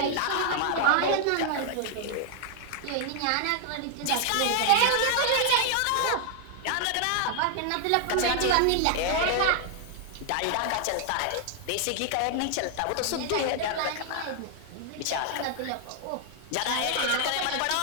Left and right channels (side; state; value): both; different; correlation 0.00